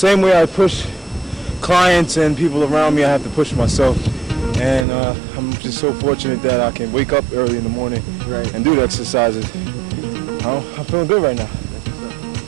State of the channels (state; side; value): drops out; left; at 4.9 s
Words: way I push clients and people around me, I have to push myself. And I'm just so fortunate that I can wake up early in the morning and do the exercises. I'm feeling good right now.